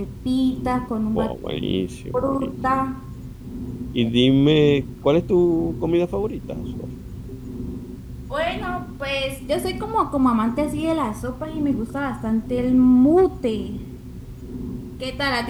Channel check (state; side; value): identical; both; correlation 1.00